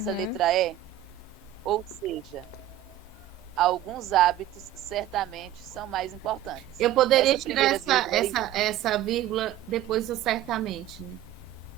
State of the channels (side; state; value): left; quieter; 12.6 dB